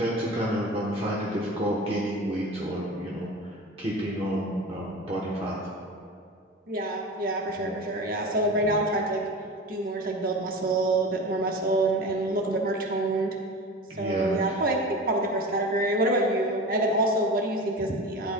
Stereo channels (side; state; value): both; normal; correlation 0.32